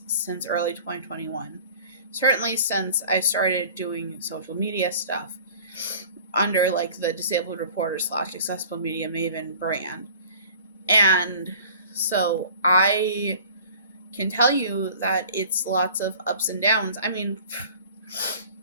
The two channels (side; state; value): both; inverted; correlation -0.46